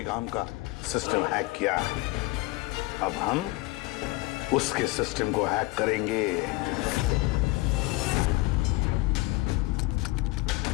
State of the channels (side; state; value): right; quieter; 20.8 dB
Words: आर्म का सिस्टम हैक किया, अब हम उसके सिस्टम को हैक करेंगे।